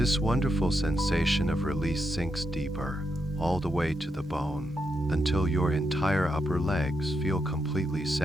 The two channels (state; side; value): normal; both; correlation 0.83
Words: wonderful sensation of release sinks deeper, all the way to the bone, until your entire upper legs feel completely